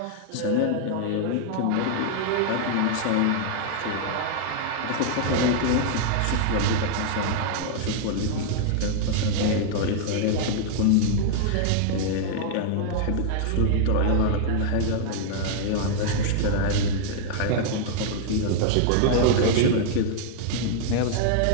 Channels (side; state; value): both; different; correlation -0.01